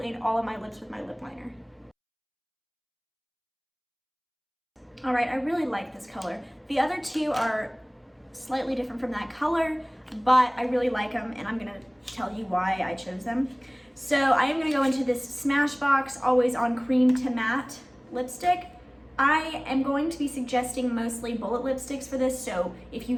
all of my lips with my lip liner. All right, I really like this color. The other two are slightly different from that color, but I really like them and I'm gonna tell you why I chose them. So I am gonna go into this Smashbox Always On Cream to Matte lipstick. I am going to be suggesting mostly bullet lipsticks for this, so if you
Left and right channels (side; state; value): both; identical; correlation 1.00